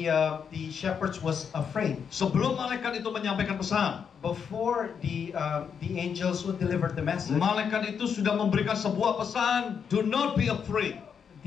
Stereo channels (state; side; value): quieter; right; 7.0 dB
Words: shepherds was afraid. Sebelum malaikat itu menyampaikan pesan, Before the angels who delivered the message, malaikat itu sudah memberikan sebuah pesan, do not be afraid.